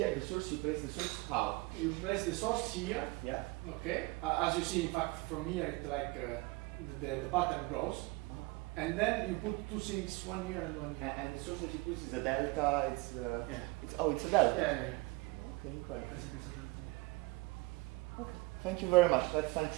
the source, you place the source how? You place the source here. Yeah. Okay. As you see, in fact, from here, it's like the pattern grows, and then you put two things, one here and one here. And the source that you put is a delta. It's yeah. It's a delta. Yeah. Okay, quite. Okay. Thank you very much. Let's thank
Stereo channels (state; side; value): quieter; left; 23.3 dB